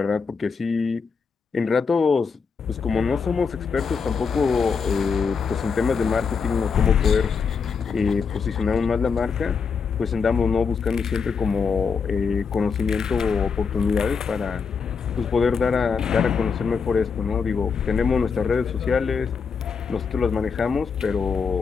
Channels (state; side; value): quieter; right; 5.6 dB